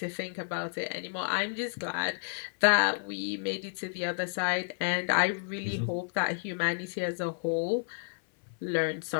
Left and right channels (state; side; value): silent; right; 57 dB below the other